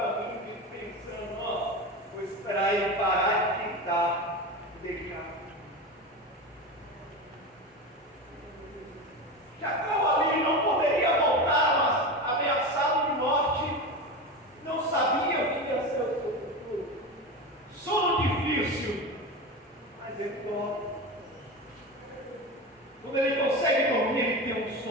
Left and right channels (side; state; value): both; normal; correlation 0.24